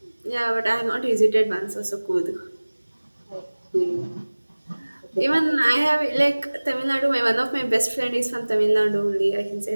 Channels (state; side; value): inverted; both; correlation -1.00